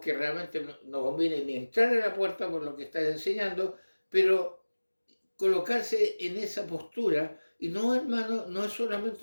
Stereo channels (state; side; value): inverted; both; correlation -1.00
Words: que realmente no conviene ni entrar a la puerta por lo que están enseñando, pero colocarse en esa postura, y no, hermano, no es